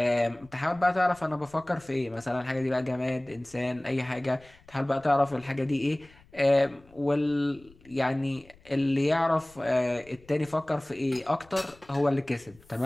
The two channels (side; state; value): left; noise; rumble, 27 dB below the sound